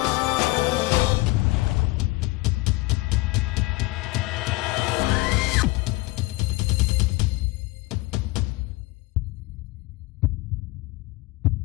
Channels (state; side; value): quieter; right; 21.6 dB